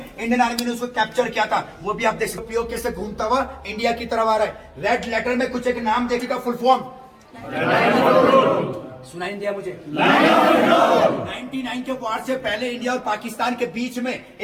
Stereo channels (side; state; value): both; identical; correlation 1.00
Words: आर्मी ने उसको कैप्चर किया था। वो भी आप देख सकते हो कैसे घूमता हुआ इंडिया की तरफ आ रहा है। रेड लेटर में कुछ एक नाम देखिएगा, फुल फॉर्म सुनाई नहीं दिया मुझे? 99 के वार से पहले इंडिया और पाकिस्तान के बीच में